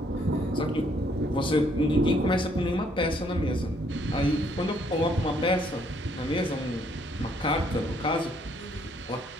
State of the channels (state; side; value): normal; both; correlation 0.67